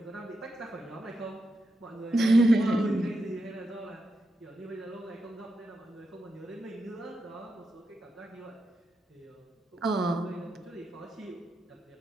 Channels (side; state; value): both; normal; correlation 0.86